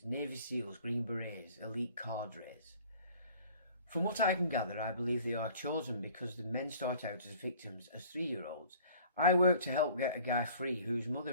Navy SEALs, Green Berets, elite cadres? From what I can gather, I believe they are chosen because the men start out as victims as 3-year-olds. I worked to help get a guy free whose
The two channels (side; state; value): both; inverted; correlation -0.50